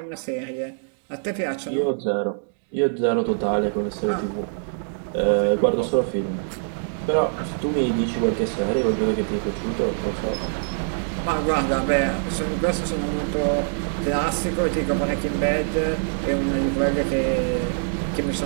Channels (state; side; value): silent; left; digital silence